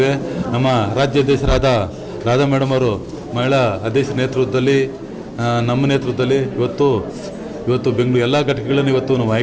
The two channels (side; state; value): both; identical; correlation 1.00